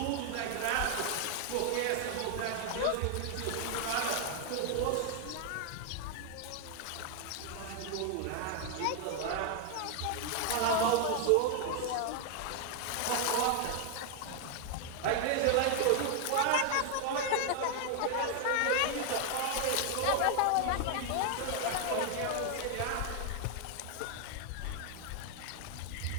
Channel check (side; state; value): both; different; correlation 0.00